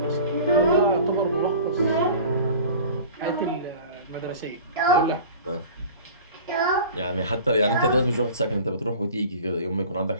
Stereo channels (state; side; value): inverted; both; correlation -0.41